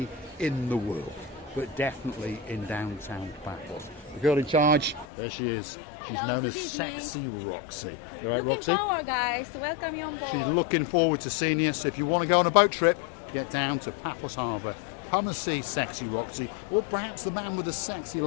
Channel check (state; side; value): drops out; right; at 5.1 s